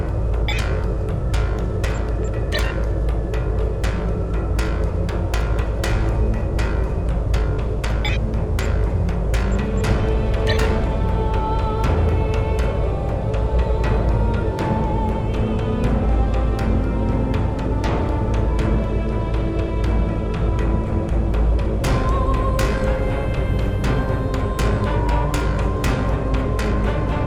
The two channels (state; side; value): identical; both; correlation 1.00